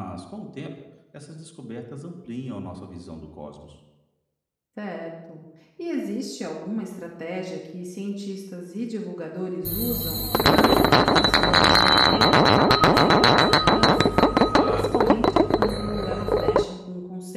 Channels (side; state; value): both; identical; correlation 1.00